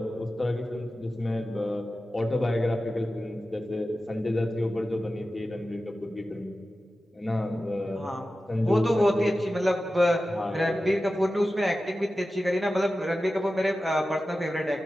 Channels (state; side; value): normal; both; correlation 0.94